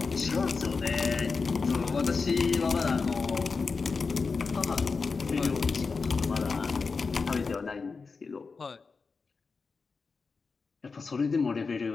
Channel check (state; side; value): quieter; right; 4.6 dB